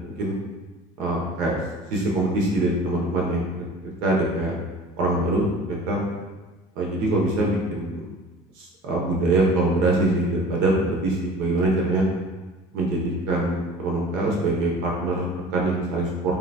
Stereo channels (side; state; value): both; normal; correlation 0.43